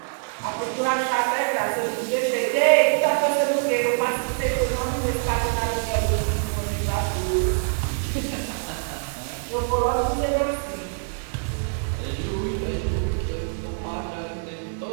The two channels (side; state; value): left; silent; digital silence